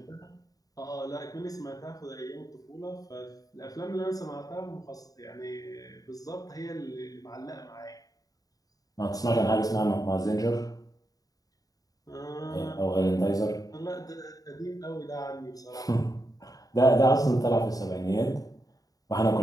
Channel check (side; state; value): right; late; 0.18 ms